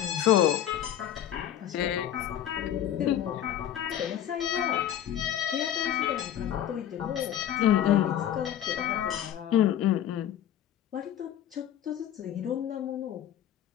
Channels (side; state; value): right; quieter; 10.8 dB